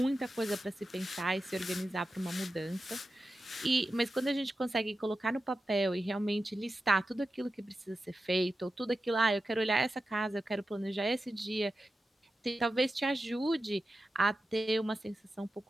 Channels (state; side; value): normal; both; correlation 0.92